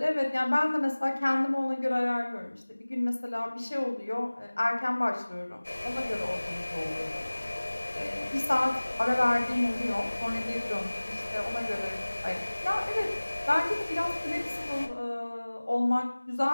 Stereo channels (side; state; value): both; inverted; correlation -1.00